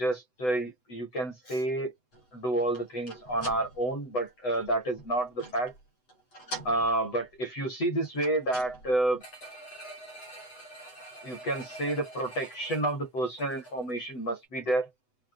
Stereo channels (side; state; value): right; late; 8.0 ms